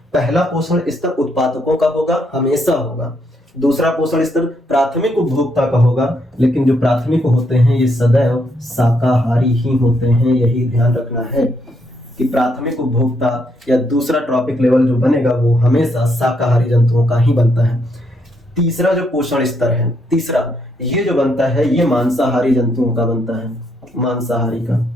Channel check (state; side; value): normal; both; correlation 0.75